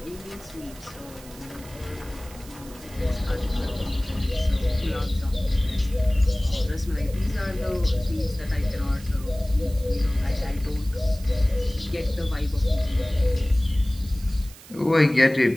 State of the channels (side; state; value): right; noise; hiss, 20 dB below the sound